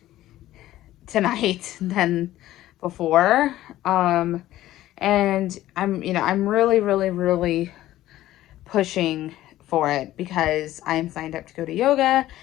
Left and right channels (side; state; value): right; quieter; 14.6 dB